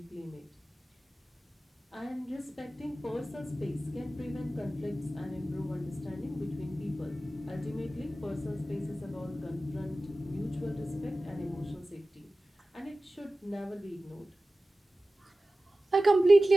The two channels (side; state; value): both; normal; correlation 0.96